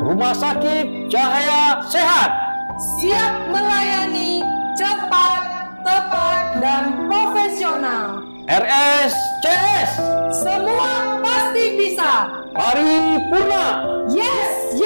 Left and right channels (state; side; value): inverted; both; correlation -1.00